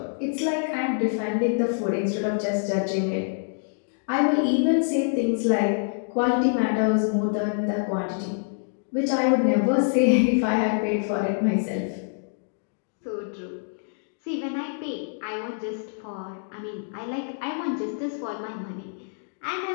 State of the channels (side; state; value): right; silent; digital silence